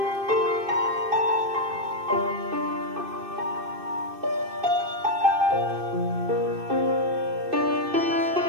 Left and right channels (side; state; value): left; late; 2.6 ms